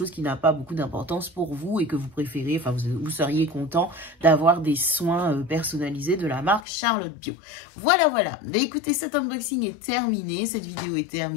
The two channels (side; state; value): right; drops out; at 6.7 s